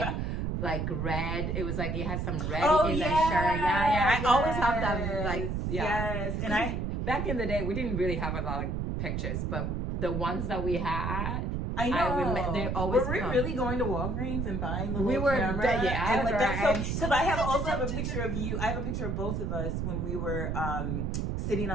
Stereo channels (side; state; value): right; noise; rumble, 1 dB below the sound